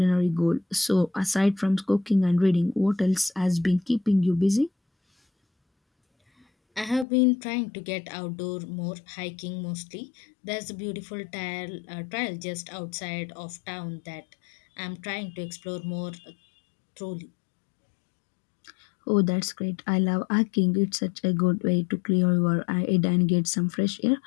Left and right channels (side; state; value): right; drops out; at 7.1 s